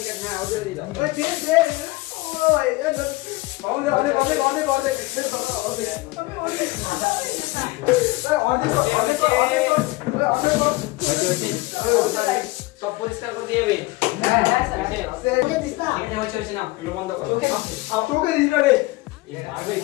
সব পরিষ্কার করে দিয়ে বন্ধ করো।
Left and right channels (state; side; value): quieter; right; 21.2 dB